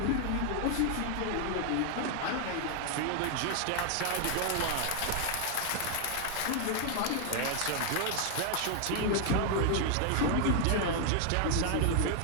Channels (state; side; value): different; both; correlation 0.00